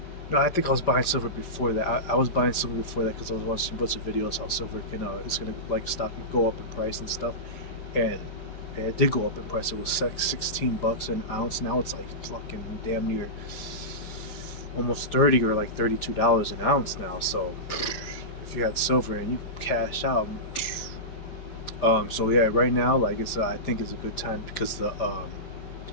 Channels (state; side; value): late; right; 5.1 ms